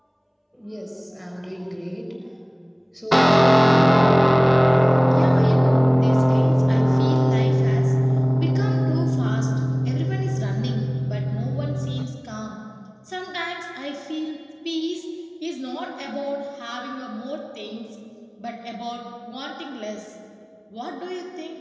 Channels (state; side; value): identical; both; correlation 1.00